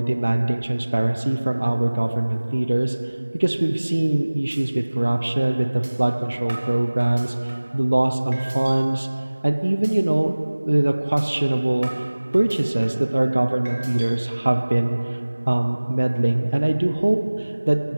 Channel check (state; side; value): inverted; both; correlation -1.00